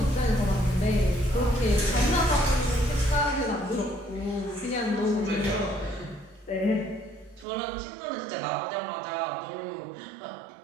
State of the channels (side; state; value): left; drops out; at 7.5 s